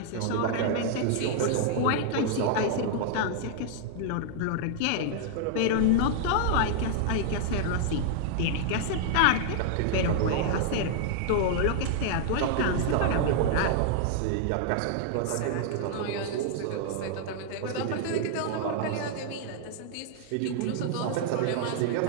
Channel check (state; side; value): different; both; correlation -0.01